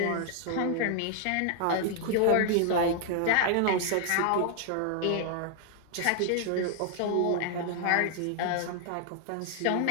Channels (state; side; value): different; both; correlation 0.00